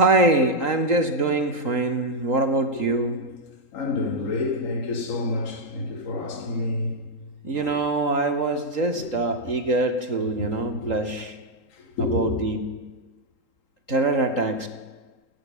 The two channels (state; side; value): late; right; 3.8 ms